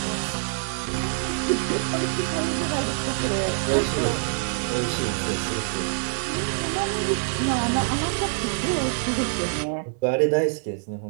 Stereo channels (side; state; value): left; silent; digital silence